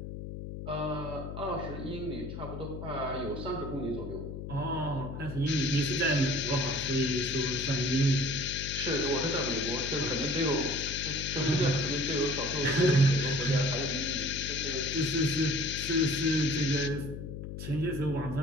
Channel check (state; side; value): noise; left; hum, 8 dB below the sound